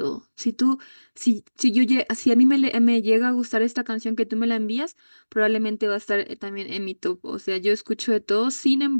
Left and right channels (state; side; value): inverted; both; correlation -1.00